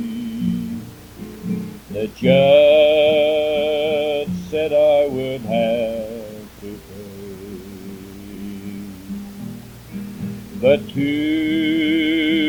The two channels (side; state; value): both; identical; correlation 1.00